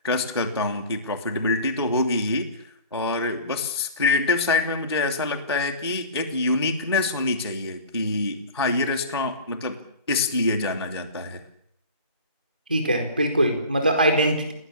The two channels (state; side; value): inverted; both; correlation -0.38